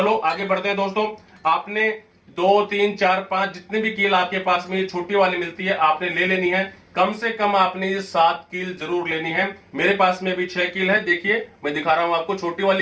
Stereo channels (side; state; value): both; identical; correlation 1.00